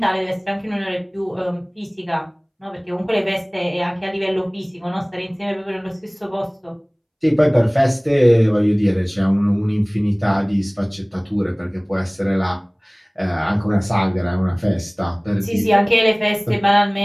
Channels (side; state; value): both; identical; correlation 1.00